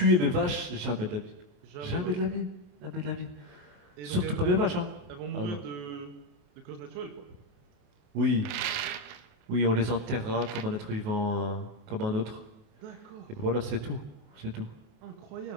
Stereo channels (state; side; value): late; left; 28 ms